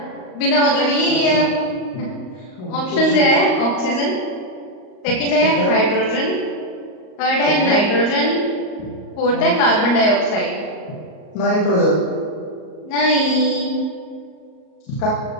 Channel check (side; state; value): right; late; 38 ms